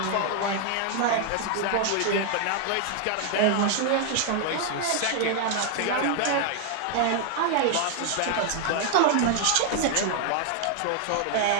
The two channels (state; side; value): different; both; correlation 0.00